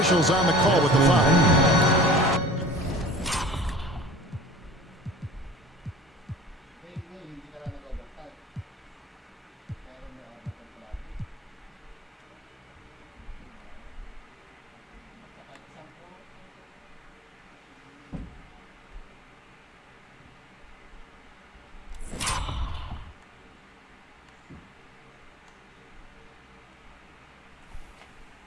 on the call with the foul.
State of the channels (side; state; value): both; normal; correlation 0.42